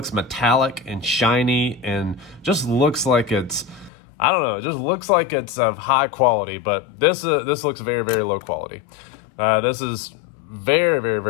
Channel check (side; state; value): right; drops out; at 3.9 s